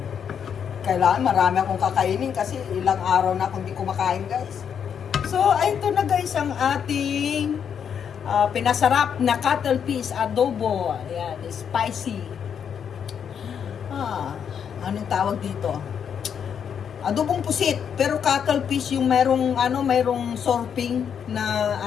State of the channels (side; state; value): right; quieter; 7.8 dB